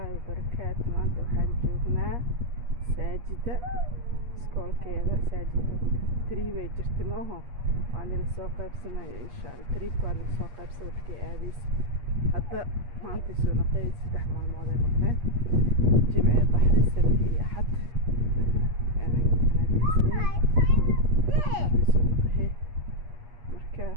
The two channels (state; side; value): late; left; 8.4 ms